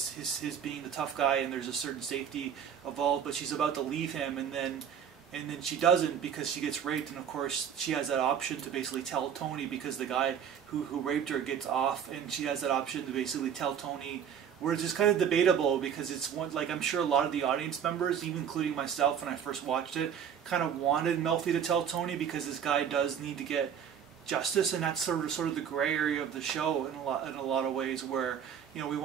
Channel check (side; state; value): left; quieter; 8.3 dB